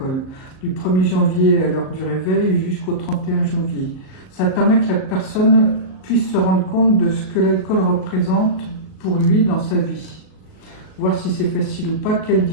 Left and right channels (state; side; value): late; right; 38 ms